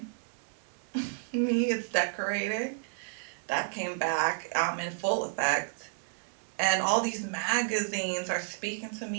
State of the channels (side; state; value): left; silent; 57 dB below the other